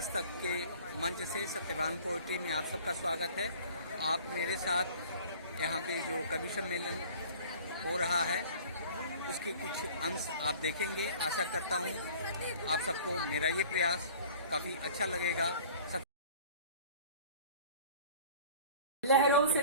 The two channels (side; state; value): both; inverted; correlation -0.46